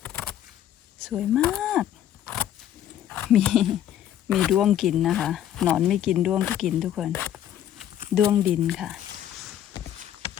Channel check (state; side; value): quieter; right; 11.1 dB